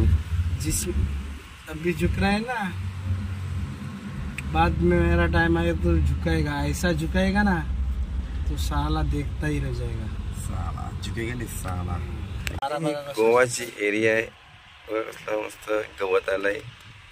जिस अभी झुक रहा है ना, बाद में मेरा टाइम आएगा तो झुकाएगा. ऐसा झुकाएगा ना तो साला देखता ही रह जाएगा. साला झुकेगा नहीं साला. गोवाची एरिया आहे. मस्त गवत आलाय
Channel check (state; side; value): identical; both; correlation 1.00